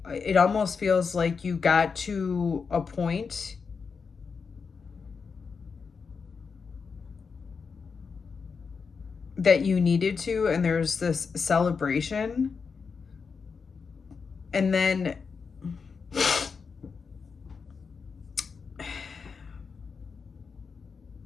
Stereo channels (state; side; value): quieter; right; 5.4 dB